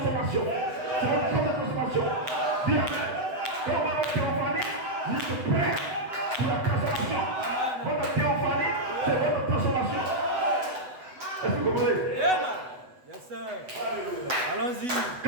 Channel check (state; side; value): late; left; 8.0 ms